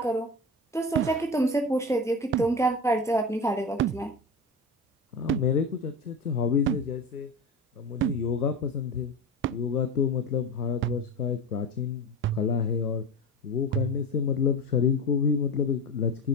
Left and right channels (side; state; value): both; normal; correlation 0.25